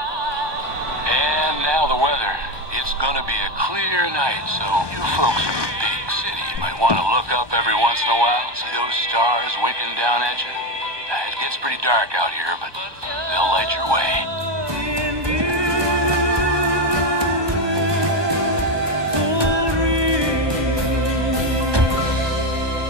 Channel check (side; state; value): left; late; 1.2 ms